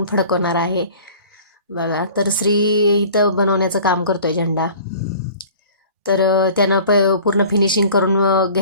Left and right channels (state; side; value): inverted; both; correlation -0.46